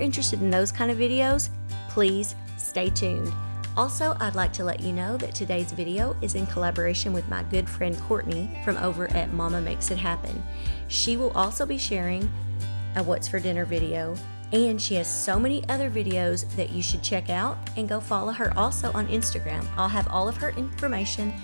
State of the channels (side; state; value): both; inverted; correlation -1.00